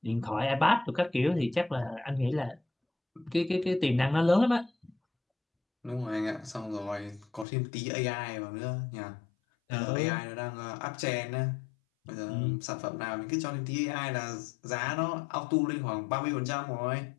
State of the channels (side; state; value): right; drops out; at 7.5 s